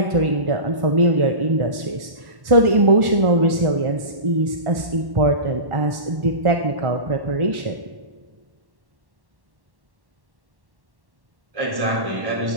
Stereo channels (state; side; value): late; left; 1.1 ms